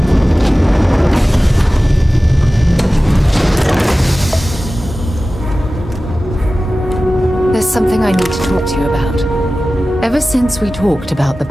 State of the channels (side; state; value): both; normal; correlation 0.96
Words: Something I need to talk to you about. Ever since we talked about the